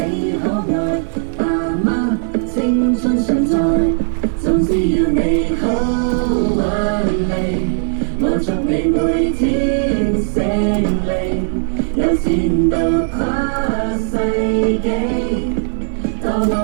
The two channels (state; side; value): silent; left; digital silence